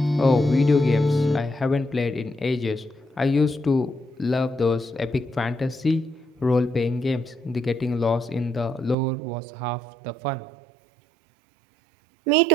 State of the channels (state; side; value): drops out; left; at 9.0 s